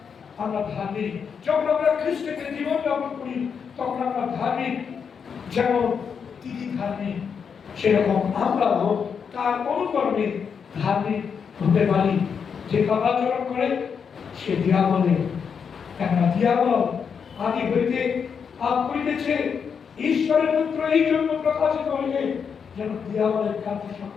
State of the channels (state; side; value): quieter; right; 6.6 dB